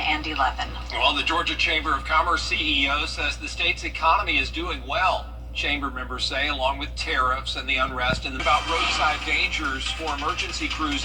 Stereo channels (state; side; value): identical; both; correlation 1.00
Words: and 11. Well, the Georgia Chamber of Commerce CEO says the state's economy is doing well. Chamber members say, along with tariffs and the unrest, and about roadside dangers for emergency crews